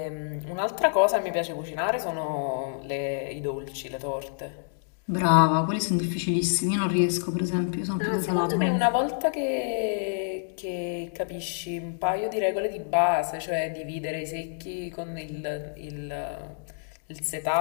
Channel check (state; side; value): silent; right; digital silence